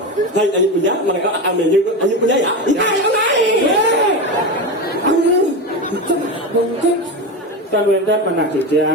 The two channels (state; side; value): normal; both; correlation 0.20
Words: Hai Layu Puja, mangeo akan menyanyi untuk Layu Puja ya. Mungkin kan wendan mana